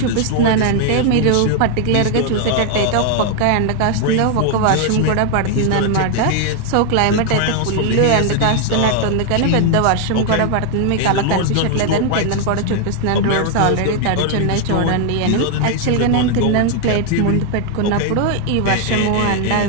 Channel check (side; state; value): both; different; correlation 0.00